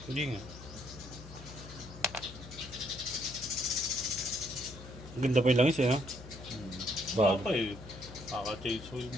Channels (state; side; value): noise; left; hum, 15 dB below the sound